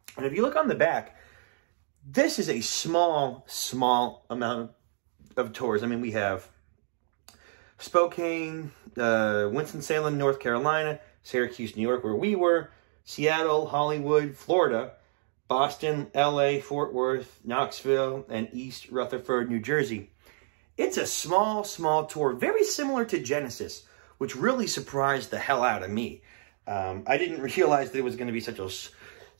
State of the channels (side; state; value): left; silent; digital silence